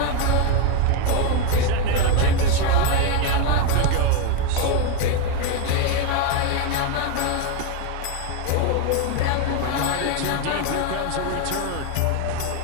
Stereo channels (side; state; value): both; different; correlation 0.02